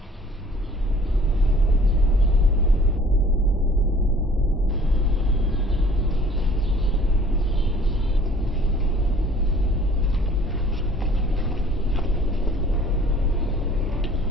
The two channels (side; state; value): both; normal; correlation 0.52